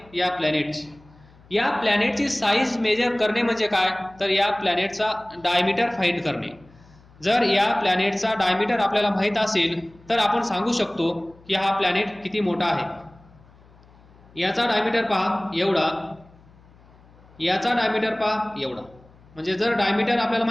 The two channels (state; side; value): noise; left; hum, 26 dB below the sound